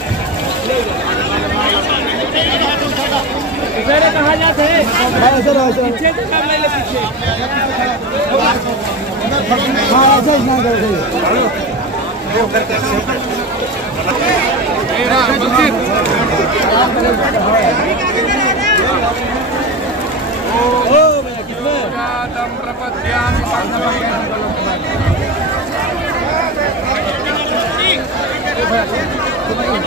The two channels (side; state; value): both; normal; correlation 0.22